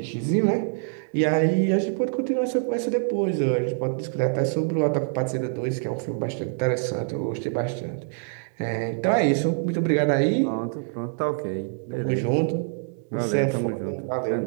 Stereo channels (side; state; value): left; silent; digital silence